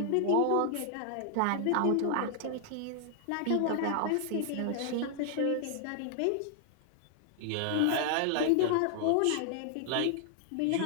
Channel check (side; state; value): both; different; correlation 0.00